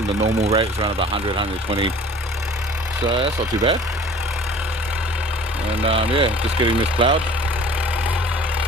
the normal rate is around about 100, 120, so that's not too bad. And yeah, just getting this ploughed,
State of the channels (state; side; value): normal; both; correlation 0.47